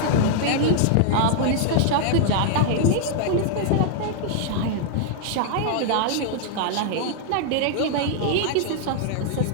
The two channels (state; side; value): different; both; correlation -0.01